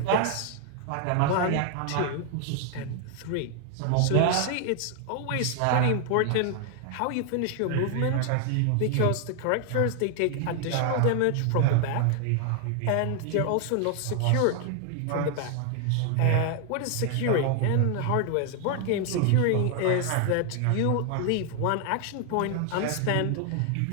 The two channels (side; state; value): both; different; correlation 0.00